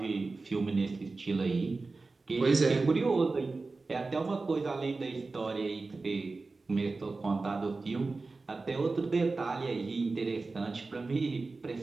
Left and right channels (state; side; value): quieter; left; 3.7 dB